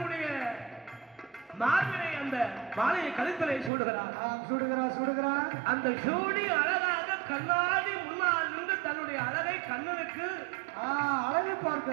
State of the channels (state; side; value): drops out; left; at 3.7 s